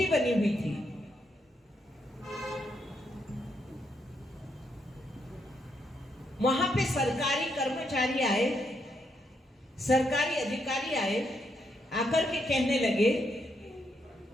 बनी हुई थी। वहां पे सरकारी कर्मचारी आए, सरकारी अधिकारी आए, आकर के कहने लगे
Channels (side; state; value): both; normal; correlation 0.78